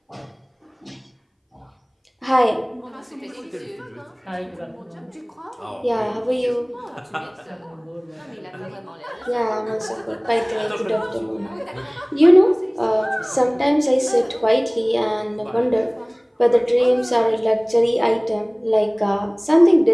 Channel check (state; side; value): identical; both; correlation 1.00